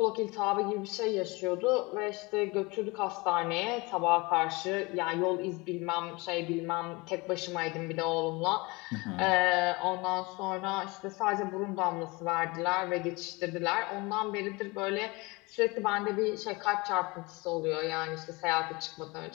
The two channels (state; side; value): quieter; right; 25.1 dB